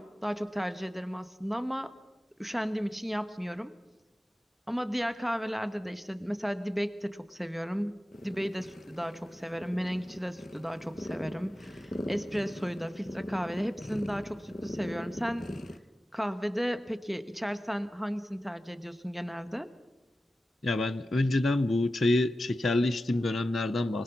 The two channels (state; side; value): normal; both; correlation 0.93